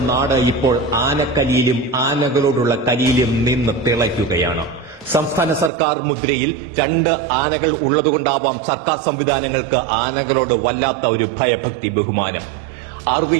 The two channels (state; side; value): drops out; left; at 5.7 s